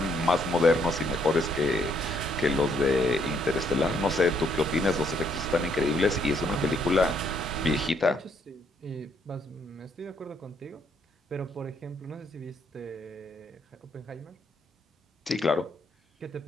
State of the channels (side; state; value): both; normal; correlation 0.70